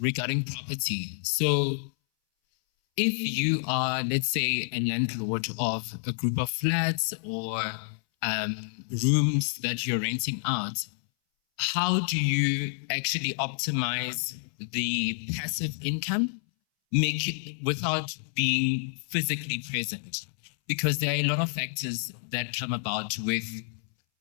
property. So if you are, let's say, a landlord of a group of flats or rooms that you're renting out, how do you actually optimize the passive income, make it without being physically present? Because there are a lot of factors that come about with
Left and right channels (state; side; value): silent; right; 59 dB below the other